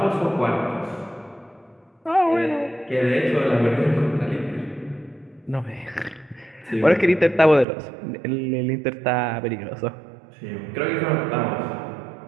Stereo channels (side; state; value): left; drops out; at 7.7 s